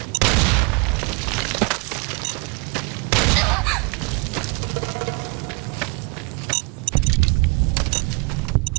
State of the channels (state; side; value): quieter; left; 30.5 dB